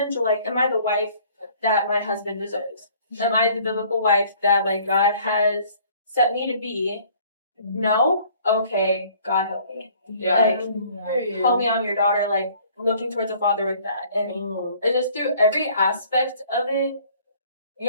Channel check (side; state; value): both; inverted; correlation -0.55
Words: Like, am I the wife that my husband deserves? Am I the biblical wife that like God has set me to be? No? Okay, God help me. Like help me, I'm your daughter, like looking towards a father with that. And it's just through every aspect of it,